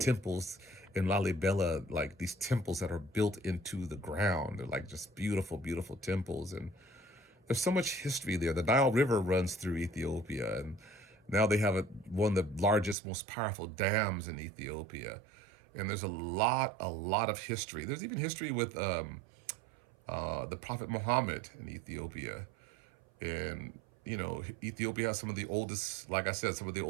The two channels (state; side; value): drops out; left; at 13.0 s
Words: in Lalibela, like these temples that are built into the ground. They're like just beautiful, beautiful temples. And there's so much history there. The Nile River runs through Ethiopia, and now they have one of the largest, most powerful dams in Ethiopia. And there's a lot of history. There's even history with the Prophet Muhammad in Ethiopia. And, you know, Ethiopia has some of the oldest, like I said, some of the